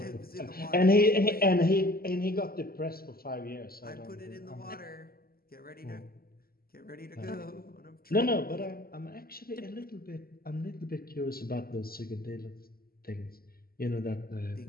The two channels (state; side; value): late; right; 0.43 ms